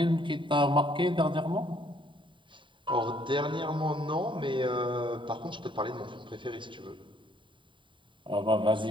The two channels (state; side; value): late; left; 0.24 ms